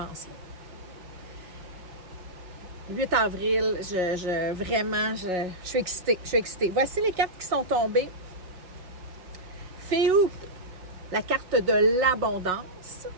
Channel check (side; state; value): left; late; 5.5 ms